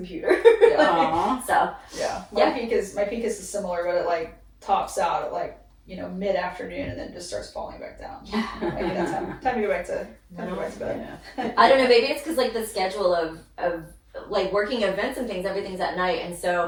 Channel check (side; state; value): both; identical; correlation 1.00